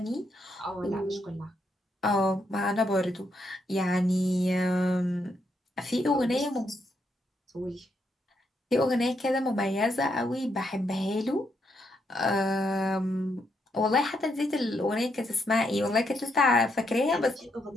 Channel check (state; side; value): normal; both; correlation 0.78